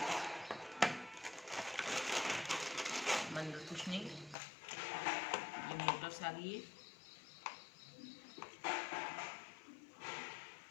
अंदर कुछ नहीं, ये मोटर्स आ गई है।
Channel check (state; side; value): drops out; right; at 4.4 s